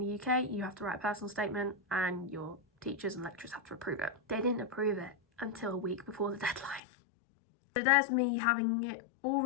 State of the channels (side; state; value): right; drops out; at 6.8 s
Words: UK, you have to write a personal statement, and your teachers and lecturers have to approve it. They didn't approve it until a week before the deadline. So there's me having it all